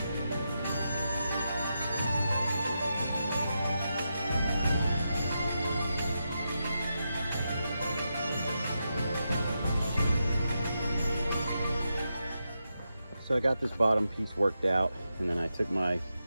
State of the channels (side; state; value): both; inverted; correlation -0.87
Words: So I got this bottom piece worked out, and then I took my